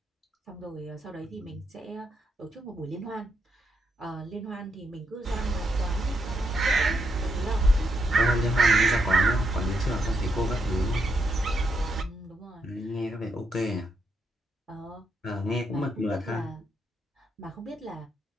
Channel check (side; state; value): both; normal; correlation 0.79